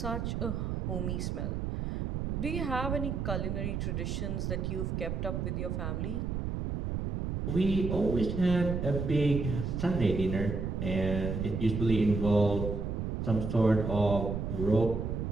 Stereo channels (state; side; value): noise; right; rumble, 2 dB below the sound